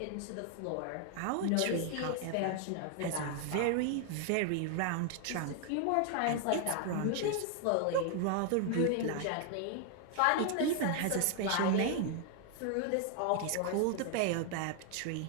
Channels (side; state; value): both; different; correlation 0.00